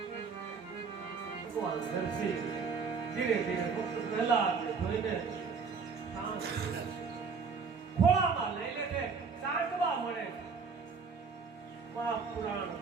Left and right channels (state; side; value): quieter; left; 5.3 dB